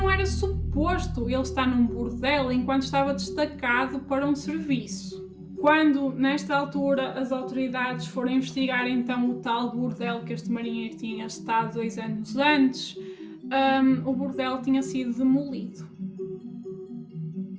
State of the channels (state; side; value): identical; both; correlation 1.00